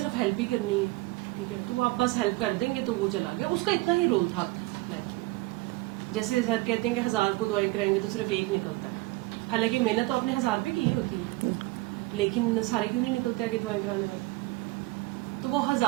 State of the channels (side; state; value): left; quieter; 21.1 dB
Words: ہیلپ ہی کرنی ہے, ٹھیک ہے, تو وہ آپ بس ہیلپ کر دیں گے تو وہ چلا گیا, اس کا اتنا ہی رول تھا آپ کی لائف میں. جیسے سر کہتے ہیں کہ 1000 کو دعائیں کرائیں گے تو صرف ایک نکلتا ہے, حالانکہ محنت تو آپ نے 1000 پہ کی ہوتی ہے, لیکن سارے کیوں نہیں نکلتے کہ دعائیں کرانے والے. تو وہ